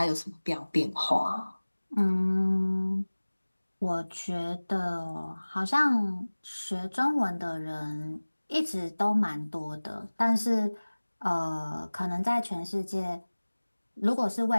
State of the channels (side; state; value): both; inverted; correlation -1.00